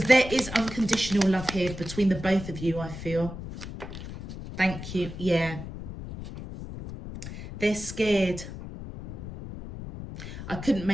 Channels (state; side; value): noise; left; rumble, 10 dB below the sound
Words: there is unconditional love here between the both of you, I feel. Thank you. Yeah. They're scared. I couldn't